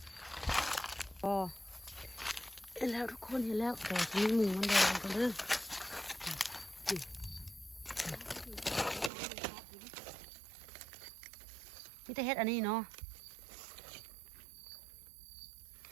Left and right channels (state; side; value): drops out; left; at 9.1 s